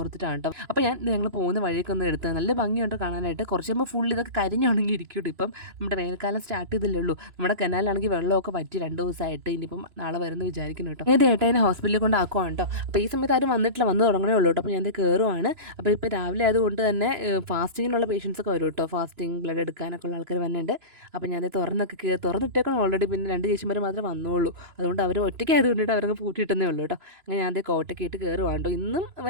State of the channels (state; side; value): late; left; 3.0 ms